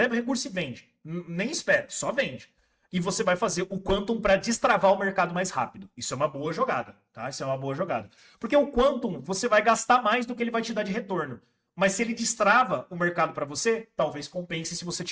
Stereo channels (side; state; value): both; identical; correlation 1.00